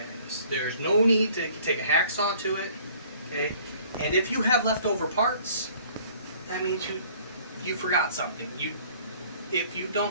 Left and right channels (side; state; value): both; inverted; correlation -0.55